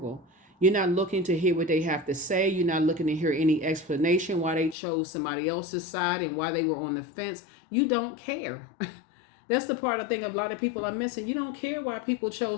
You're not looking to hear what they have to say. You're not looking to hear any explanation why they chose somebody else's side and why they were on the fence. You don't care. That's the part I think a lot of people are missing. You don't care why people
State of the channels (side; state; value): right; drops out; at 4.8 s